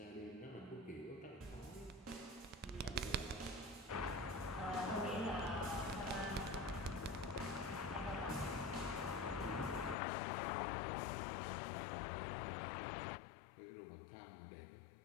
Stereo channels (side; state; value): right; drops out; at 10.0 s